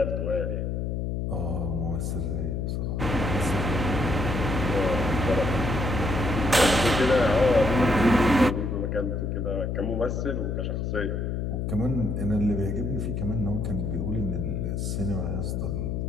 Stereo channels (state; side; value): noise; left; hum, 1 dB below the sound